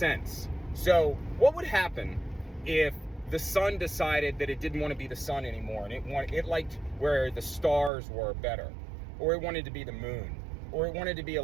So what would happen if the sun decided that it didn't want to be the sun anymore, and it liked where the stars were better, or it wanted to be the moon, or it wanted to be a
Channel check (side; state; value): left; drops out; at 7.9 s